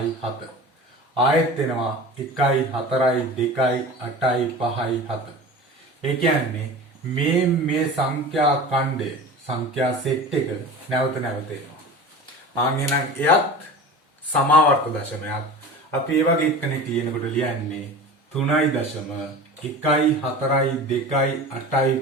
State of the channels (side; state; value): both; normal; correlation 0.35